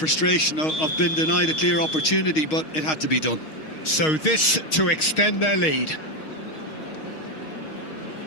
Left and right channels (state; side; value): late; right; 6.4 ms